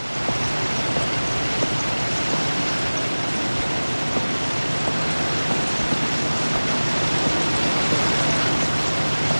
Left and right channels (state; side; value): inverted; both; correlation -1.00